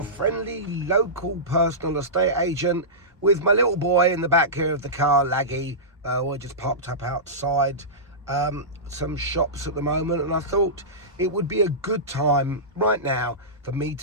friendly local personal estate agent, with my little boy in the back here of the car, Laggy. We're just parked up outside some shops at the moment, and I thought it would be a good time right now for me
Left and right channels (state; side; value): normal; both; correlation -0.18